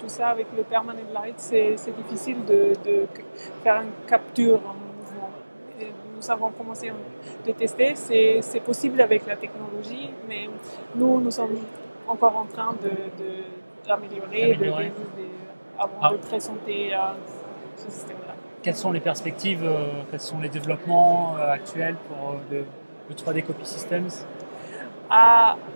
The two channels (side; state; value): both; inverted; correlation -1.00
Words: ça. Avec le permanent light, c'est difficile de faire une capture en mouvement. Et nous avons commencé de tester. C'est possible avec la technologie, mais nous sommes encore en train d'améliorer avant de présenter ce système-là. Quelles sont les perspectives, quels sont les développements actuels pour le 3D Copy Systems?